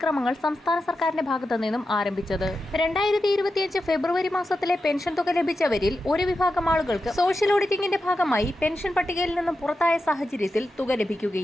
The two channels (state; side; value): normal; both; correlation 0.90